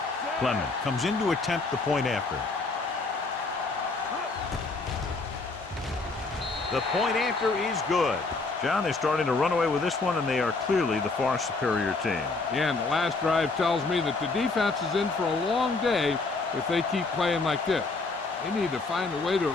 Clement comes in to attempt the point after. The point after is good. John, they're starting to run away with this one, and they are clearly the far superior team. Yeah, and the last drive tells me that the defense is in for a long day if they keep playing like this. They need to find a way to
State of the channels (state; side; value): quieter; right; 3.7 dB